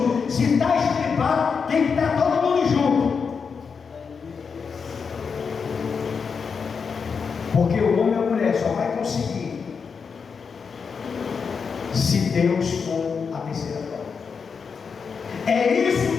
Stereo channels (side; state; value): right; quieter; 5.8 dB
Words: Se está estripado, tem que estar todo mundo junto. Porque o homem e a mulher só vai conseguir se Deus for a terceira prova. É